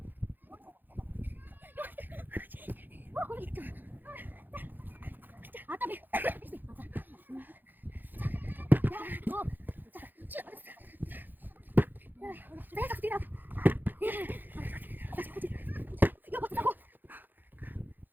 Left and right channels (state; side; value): late; left; 0.089 ms